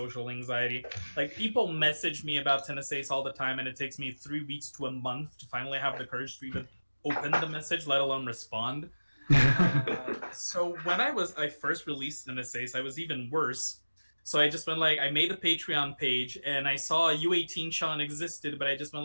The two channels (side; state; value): both; inverted; correlation -1.00